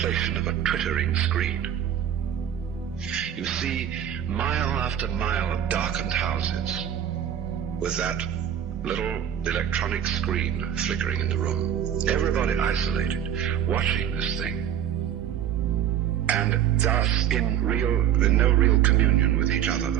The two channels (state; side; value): quieter; left; 9.9 dB